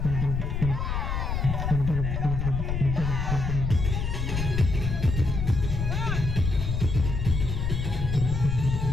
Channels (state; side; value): noise; left; rumble, 1 dB below the sound